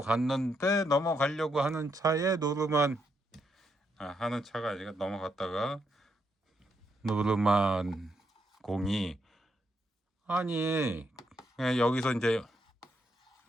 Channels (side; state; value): both; normal; correlation 0.79